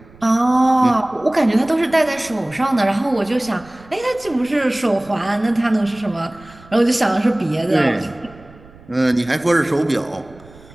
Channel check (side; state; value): right; noise; rumble, 23 dB below the sound